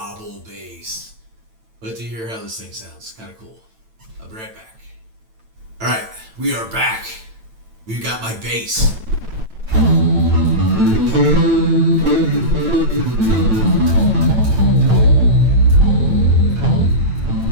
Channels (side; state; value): left; late; 9.0 ms